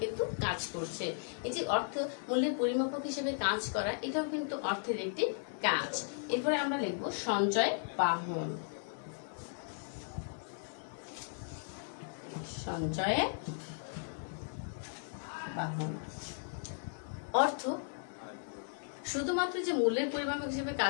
কিন্তু কাজ করছে। এই যে অর্থ মূল্যের পরিমাপক হিসেবে কাজ করা, এটাও কিন্তু অর্থের একটি কাজ। এরপরে আমরা লিখবো সঞ্চয় বাহন। সঞ্চয় বাহন। অর্থ শুধুমাত্র যে মূল্যের পরিমাপক হিসেবে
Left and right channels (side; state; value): right; silent; 54 dB below the other